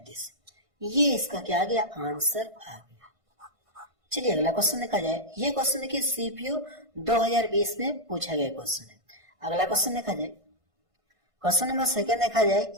ये इसका क्या आ गया, आंसर आ गया। चलिए अगला क्वेश्चन देखा जाए। ये क्वेश्चन देखिए सीपीओ 2020 में पूछा गया क्वेश्चन है। अगला क्वेश्चन देखा जाए, क्वेश्चन नंबर 2 देखा जाए।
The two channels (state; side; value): late; left; 1.5 ms